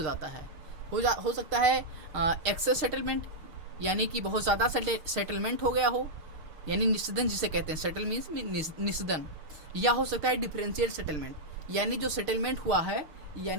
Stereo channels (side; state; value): left; late; 6.5 ms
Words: जाता है, हो सकता है एक्सेस सेटलमेंट, यानी कि बहुत ज़्यादा सेटलमेंट हो गया हो, यानी निषेधन जिसे कहते हैं, सेटल मीन्स निषेधन। या हो सकता है डिफरेंशियल सेटलमेंट, यानी जो सेटलमेंट हुआ है